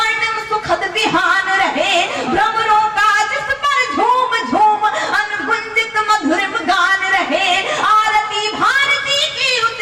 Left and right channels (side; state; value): both; identical; correlation 1.00